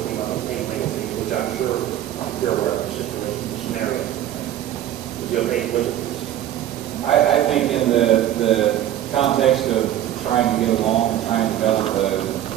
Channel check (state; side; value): quieter; left; 12.1 dB